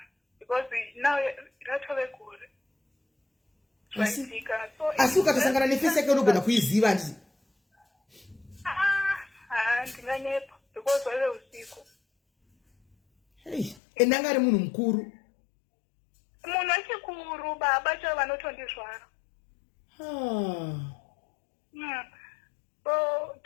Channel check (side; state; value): right; drops out; at 13.8 s